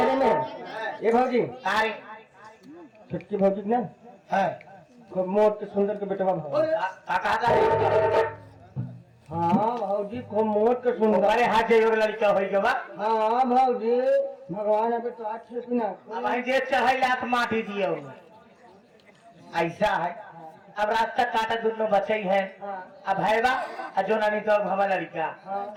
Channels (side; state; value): both; identical; correlation 1.00